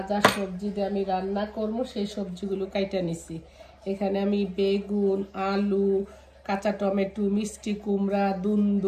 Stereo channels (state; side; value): identical; both; correlation 1.00